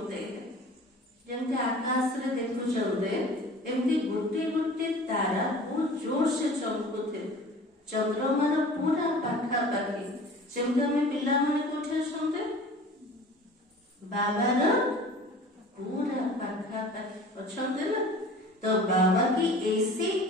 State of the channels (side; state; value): both; normal; correlation 0.43